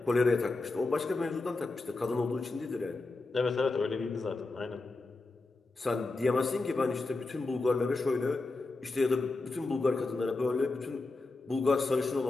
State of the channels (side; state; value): right; quieter; 3.3 dB